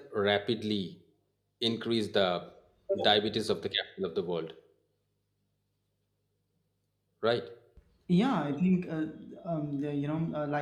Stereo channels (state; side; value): identical; both; correlation 1.00